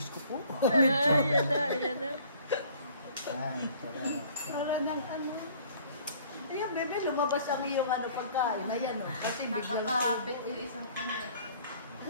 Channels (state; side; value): inverted; both; correlation -0.54